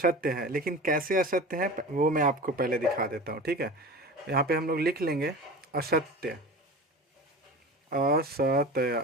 है, लेकिन कैसे असत्य है वो मैं आपको पहले दिखा देता हूँ, ठीक है। यहाँ पे हम लोग लिख लेंगे असत्य, असत्य,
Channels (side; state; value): both; normal; correlation 0.34